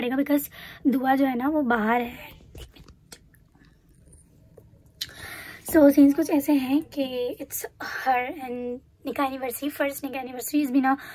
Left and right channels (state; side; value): identical; both; correlation 1.00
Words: बिकॉज दुआ जो है ना वो बाहर है। सो सीन्स कुछ ऐसे हैं कि इट्स हर एंड निकाह एनिवर्सरी, फर्स्ट निकाह anniversary is been